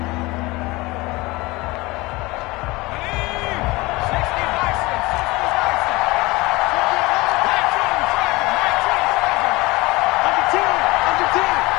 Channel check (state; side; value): quieter; right; 22.2 dB